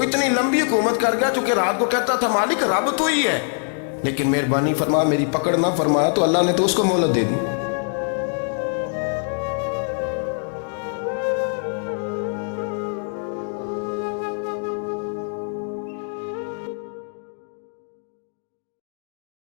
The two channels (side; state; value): right; silent; 56 dB below the other